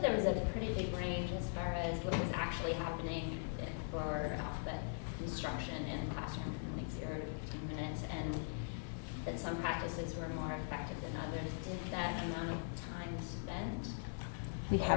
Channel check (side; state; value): right; silent; digital silence